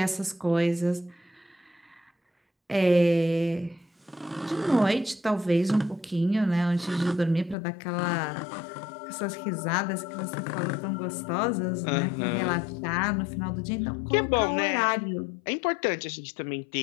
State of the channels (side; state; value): right; drops out; at 7.6 s